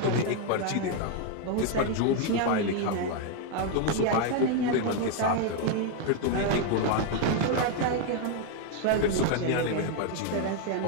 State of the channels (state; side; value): different; both; correlation 0.01